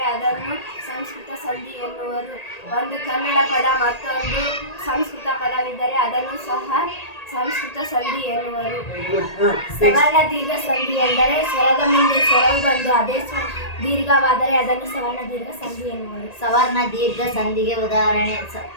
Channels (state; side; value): late; right; 1.8 ms